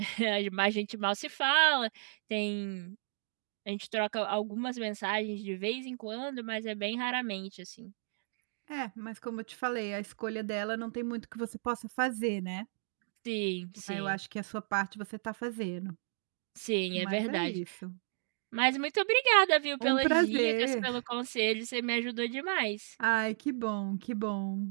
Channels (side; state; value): left; silent; digital silence